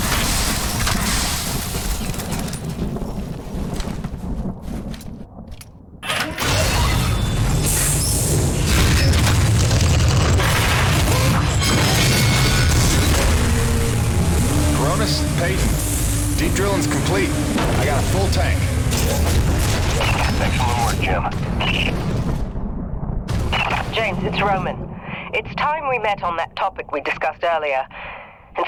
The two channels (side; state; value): both; identical; correlation 1.00